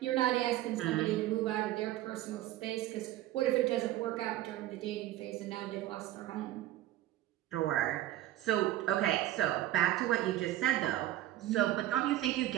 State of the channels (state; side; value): quieter; left; 14.3 dB